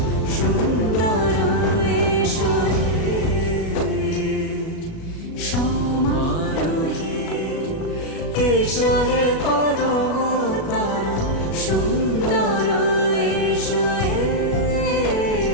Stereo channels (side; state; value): right; late; 37 ms